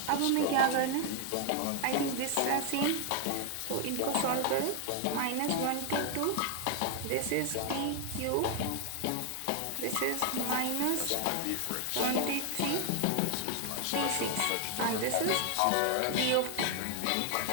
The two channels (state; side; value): different; both; correlation 0.00